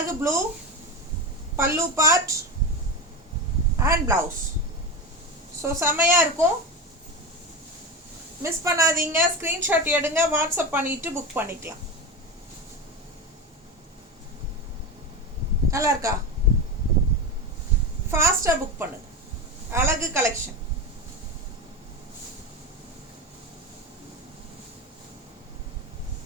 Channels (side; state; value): both; normal; correlation 0.21